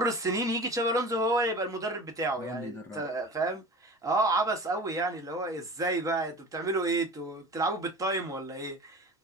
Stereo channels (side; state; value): both; normal; correlation 0.37